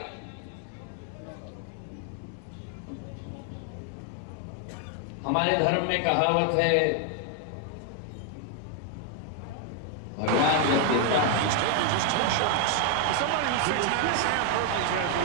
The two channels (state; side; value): different; both; correlation 0.00